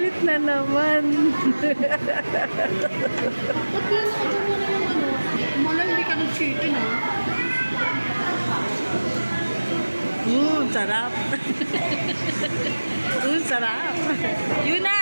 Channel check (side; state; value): both; inverted; correlation -1.00